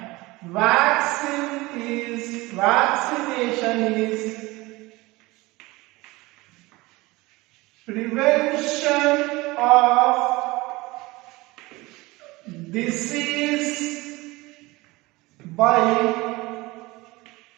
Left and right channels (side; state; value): left; quieter; 21.5 dB